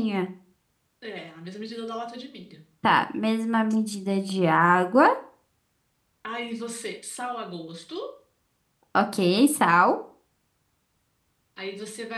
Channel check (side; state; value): both; identical; correlation 1.00